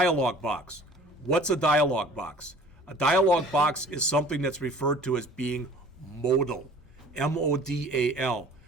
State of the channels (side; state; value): both; normal; correlation 0.48